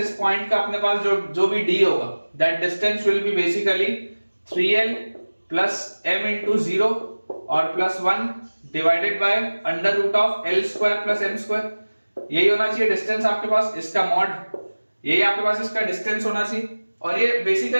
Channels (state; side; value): inverted; both; correlation -1.00